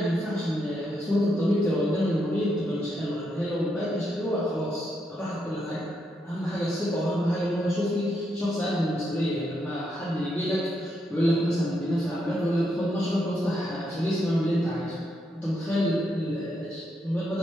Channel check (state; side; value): normal; both; correlation 0.80